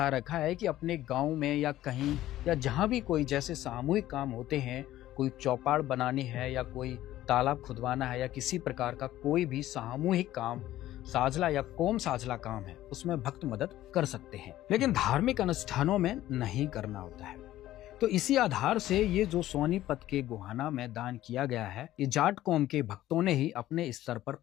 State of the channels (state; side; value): quieter; right; 14.3 dB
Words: रखा है कि अपने गांव में या कहीं या जहां भी कोई जैसे सामूहिक काम होते हैं, कोई चौपाड़ बनानी है या कोई तालाब खुदवाना है या किसी प्रकार का कोई भी सामूहिक काम, साझला या कोम साझला काम है, उसमें भक्त मदद कर सकते हैं, लेकिन धार्मिक अनुष्ठानों में नहीं करना होता है। तो इसी आधार से ये जो सोनीपत के गोहाना में दान किया गया है, ये जाट कौम के भक्तों ने ही अपने स्तर पर